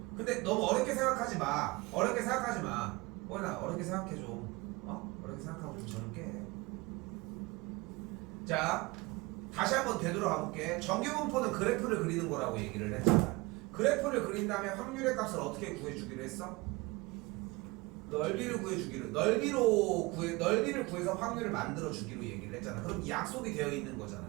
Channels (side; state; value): left; quieter; 24.0 dB